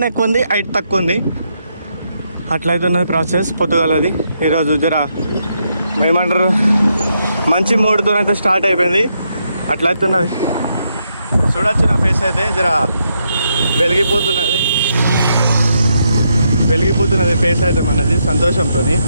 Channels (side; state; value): both; inverted; correlation -0.79